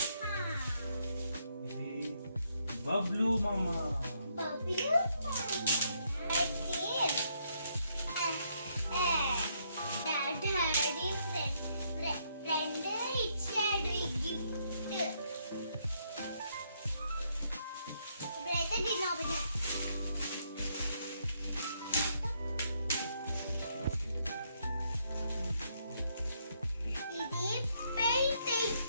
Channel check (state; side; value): inverted; both; correlation -0.73